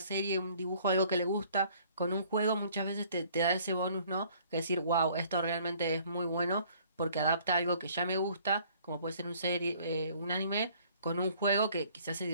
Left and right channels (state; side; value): inverted; both; correlation -0.57